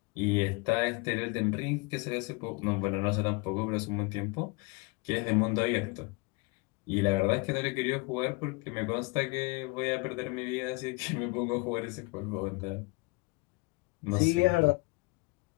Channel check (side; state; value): right; quieter; 27.2 dB